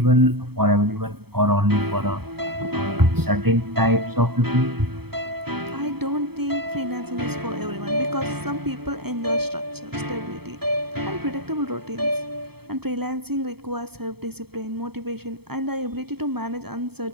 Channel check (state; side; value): late; left; 0.97 ms